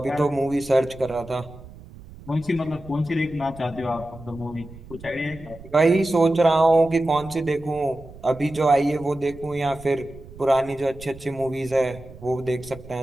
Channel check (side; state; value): right; noise; rumble, 18 dB below the sound